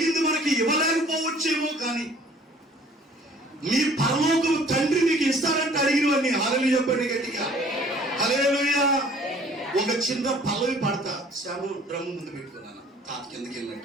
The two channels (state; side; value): normal; both; correlation 0.54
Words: మనకి ఇవ్వలేకపోవచ్చేమో, కానీ మీ పరలోకం తండ్రి మీకు ఇస్తారంటే అడిగినవన్నీ. హల్లెలూయా చెప్పండి గట్టిగా. హల్లెలూయా. ఒక చిన్న పల్లవి పాడతా. శ్యాము డ్రమ్ ముందు పెట్టుకున్నాను, తాత కిందకి